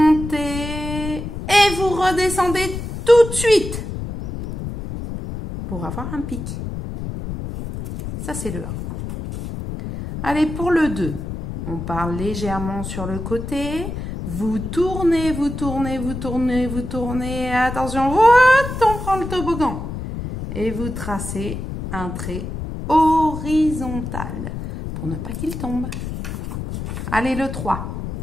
et vous redescendez tout de suite pour avoir un pic. Ça c'est le 1. Allez, pour le 2. On part légèrement sur le côté. Vous tournez, vous tournez, vous tournez, vous tournez. Attention, on prend le toboggan. Et vous tracez un trait horizontal pour ne pas qu'il tombe. Allez, le 3.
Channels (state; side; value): noise; left; rumble, 7 dB below the sound